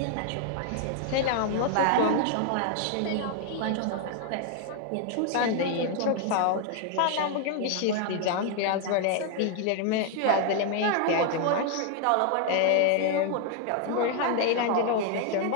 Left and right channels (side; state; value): both; different; correlation 0.00